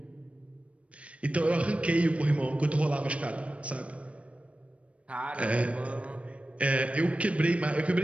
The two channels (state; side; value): late; left; 0.063 ms